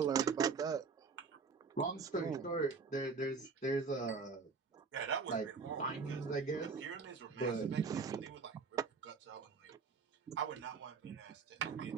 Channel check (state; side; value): quieter; left; 5.0 dB